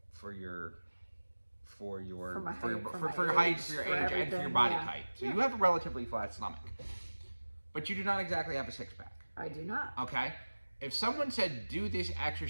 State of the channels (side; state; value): both; inverted; correlation -1.00